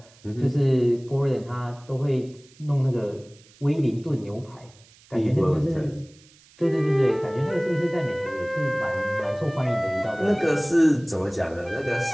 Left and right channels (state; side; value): noise; right; hiss, 27 dB below the sound